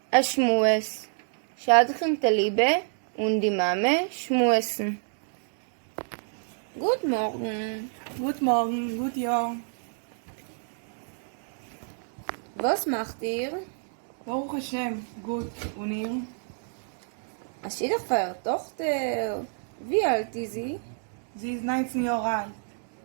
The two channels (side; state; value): left; silent; digital silence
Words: Ashmues. Shadchem Talibe und die Mame schmuesen. Guten Morgen. Guten Morgen, gut Jahr. Was macht ihr? Baruch Hashem, gut. Und ihr? Es ist doch für ihre Tochter. Wie alt ist sie? Sie ist 19 Jahre alt.